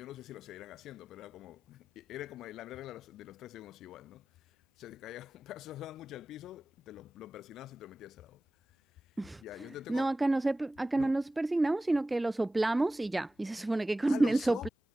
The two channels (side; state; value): both; normal; correlation 0.96